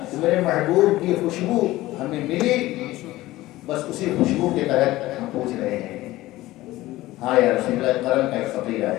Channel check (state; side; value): quieter; right; 17.3 dB